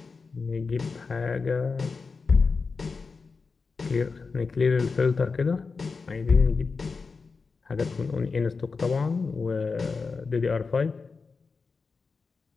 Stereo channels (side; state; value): right; quieter; 4.7 dB